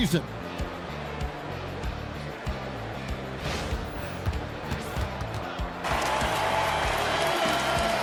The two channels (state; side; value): identical; both; correlation 1.00